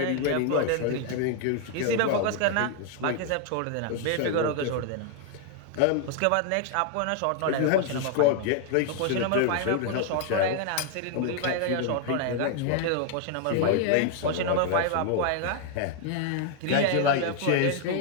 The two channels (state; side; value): different; both; correlation 0.00